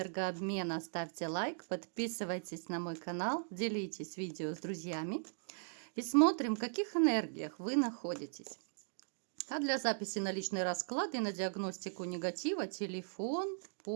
ставьте лайк, подписывайтесь на мой канал, делитесь видео с друзьями. И смотрим, в каких энергиях вы находитесь. А для записи на личный расклад и на диагностику негатива телефон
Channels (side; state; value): left; silent; digital silence